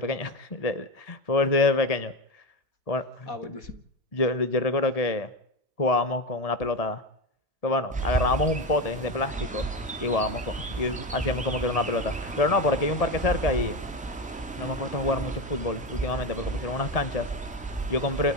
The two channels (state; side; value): normal; both; correlation 0.18